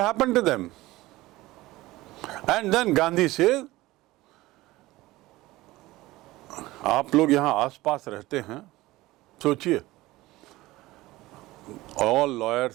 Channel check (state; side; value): quieter; left; 18.6 dB